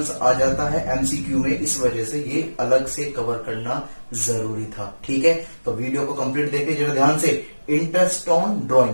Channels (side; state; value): both; inverted; correlation -1.00